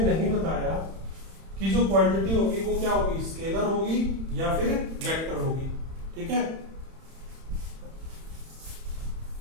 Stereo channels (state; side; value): late; left; 31 ms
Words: नहीं बताया कि जो क्वांटिटी होगी वो क्या होगी, स्केलर होगी या फिर वेक्टर होगी, ठीक है।